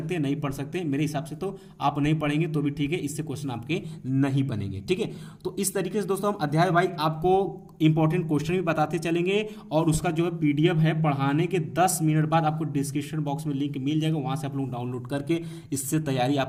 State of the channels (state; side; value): identical; both; correlation 1.00